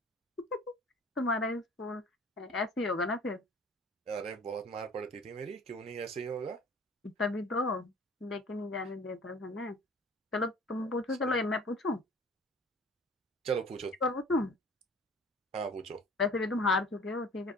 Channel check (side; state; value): both; normal; correlation 0.47